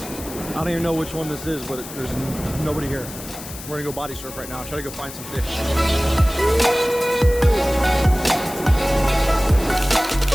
I don't even know which one this is, but there's nobody here. We're gonna go body surf right now. Try to go find some fish.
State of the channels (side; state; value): left; noise; hiss, 13 dB below the sound